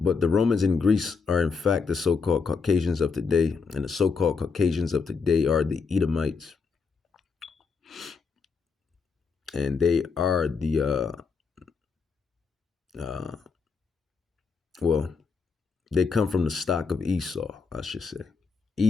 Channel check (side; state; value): right; quieter; 5.2 dB